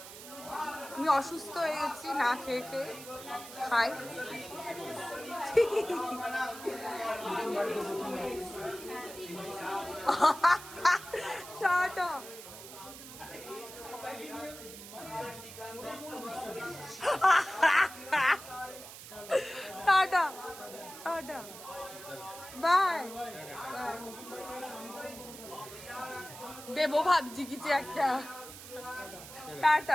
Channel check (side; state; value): right; noise; hiss, 14 dB below the sound